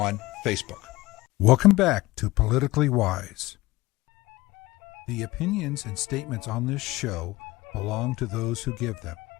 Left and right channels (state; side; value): quieter; right; 19.6 dB